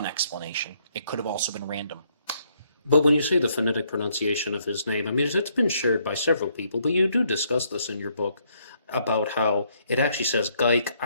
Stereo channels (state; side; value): inverted; both; correlation -0.71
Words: explanation. It could have also been random. But when you say the phonetic pronunciation of his name, I mean, it's been shared by several people, but you do discuss this in your book about how it actually says